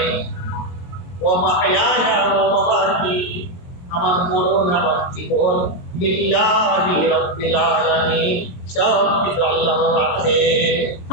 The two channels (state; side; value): late; right; 22 ms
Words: ওয়া মাহইয়ায়া ওয়া মামাতি, আমার মরণ আমার জীবন, লিল্লাহি রাব্বিল আলামিন, সব কিছু আল্লাহর হাতে।